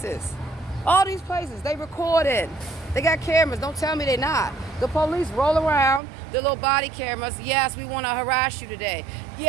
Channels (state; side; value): drops out; left; at 6.0 s